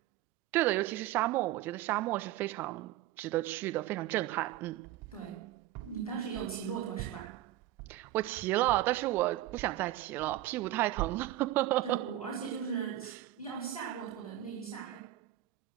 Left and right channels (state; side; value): quieter; left; 14.2 dB